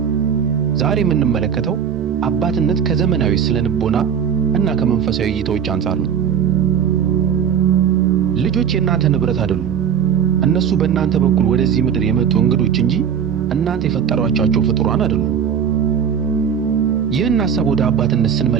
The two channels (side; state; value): left; quieter; 7.9 dB